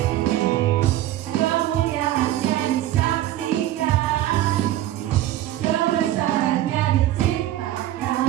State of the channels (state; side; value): quieter; left; 13.7 dB